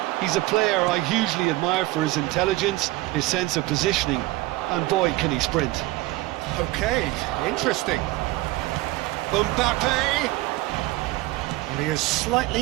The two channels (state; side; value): quieter; left; 19.1 dB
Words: He's a player I hugely admire for his intelligence, his sense of positioning, and boy, can he sprint. Okay, interesting. Mbappe! And he has slightly